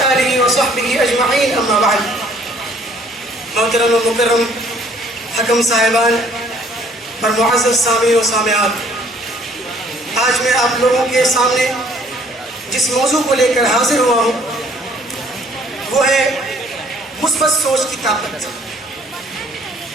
وصحبہ اجمعین. اما بعد. محترم و مکرم حکم صاحبان اور معزز سامعین و سامعات، آج میں آپ لوگوں کے سامنے جس موضوع کو لے کر حاضر ہوا ہوں وہ ہے مثبت سوچ کی طاقت.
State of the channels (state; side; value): normal; both; correlation 0.60